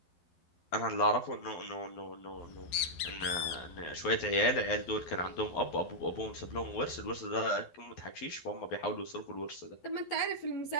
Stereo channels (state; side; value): late; right; 12 ms